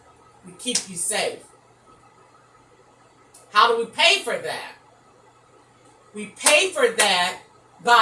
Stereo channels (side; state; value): both; identical; correlation 1.00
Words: We keep you safe. How do we pay for that? We pay for that